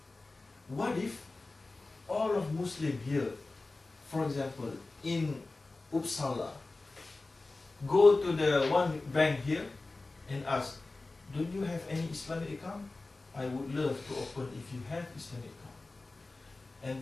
What if all of Muslim here, for example, in Uppsala, go to the one bank here and ask, don't you have any Islamic account? I would love to open if you have Islamic account.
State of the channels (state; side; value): quieter; right; 3.3 dB